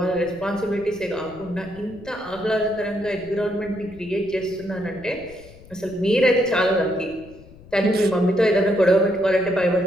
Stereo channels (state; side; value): noise; left; rumble, 22 dB below the sound